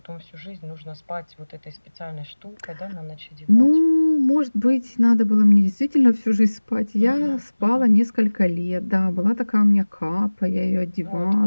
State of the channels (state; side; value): inverted; both; correlation -1.00